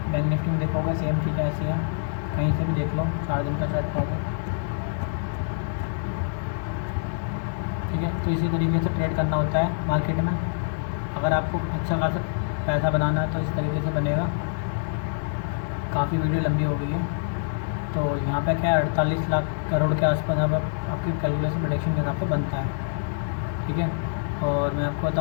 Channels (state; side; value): silent; right; digital silence